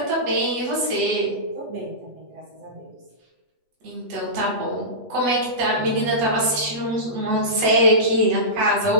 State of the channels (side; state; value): left; late; 8.0 ms